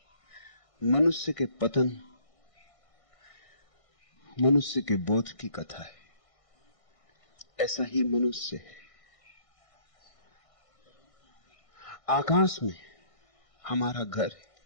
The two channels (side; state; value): right; late; 1.6 ms